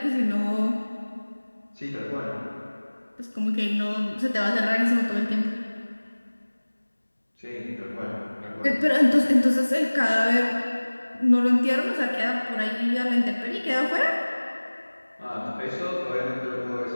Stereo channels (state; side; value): inverted; both; correlation -1.00